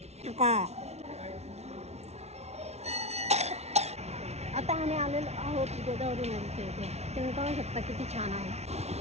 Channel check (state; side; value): late; left; 0.31 ms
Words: आता आम्ही आलेलो आहोत गोदावरी नदीच्या इथे. तुम्ही पाहू शकता किती छान आहे.